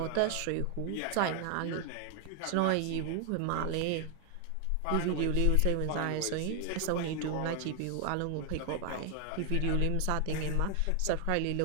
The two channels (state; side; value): different; both; correlation 0.00